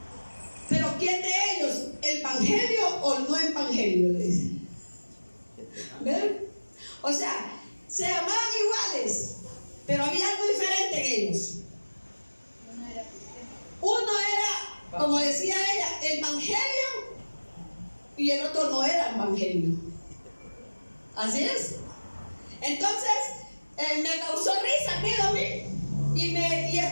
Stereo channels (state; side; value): inverted; both; correlation -1.00